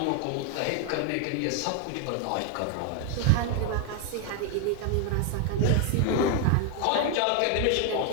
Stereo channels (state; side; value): different; both; correlation 0.01